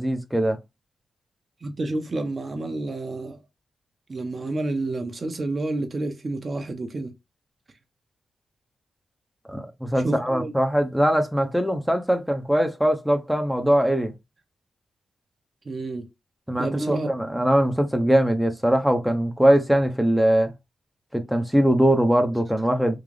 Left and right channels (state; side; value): normal; both; correlation 0.96